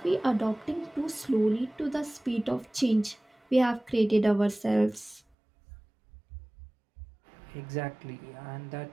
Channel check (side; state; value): left; drops out; at 5.2 s